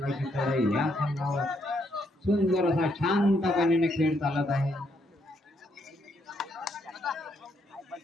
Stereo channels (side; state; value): both; normal; correlation 0.74